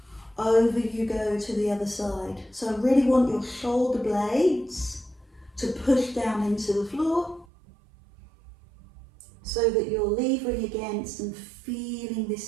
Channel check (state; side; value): drops out; left; at 7.5 s